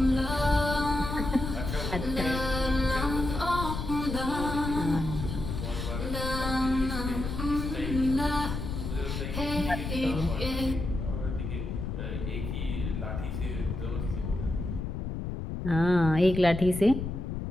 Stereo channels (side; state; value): left; noise; rumble, 4 dB below the sound